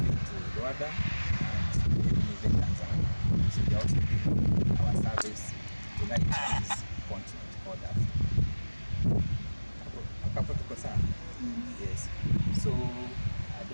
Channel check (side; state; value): both; inverted; correlation -1.00